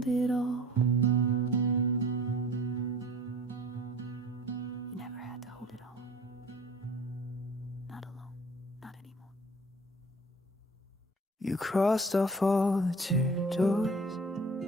it all. You never had to hold it all. Not alone. Not anymore. You crossed off all the tear doors,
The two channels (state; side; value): normal; both; correlation 0.45